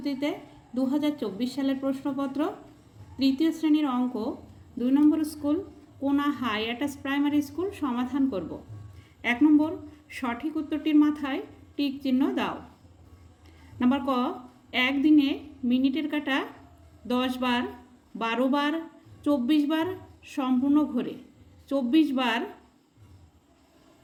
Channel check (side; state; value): both; identical; correlation 1.00